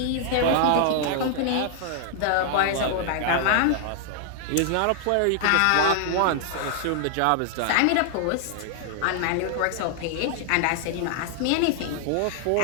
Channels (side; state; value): both; different; correlation -0.01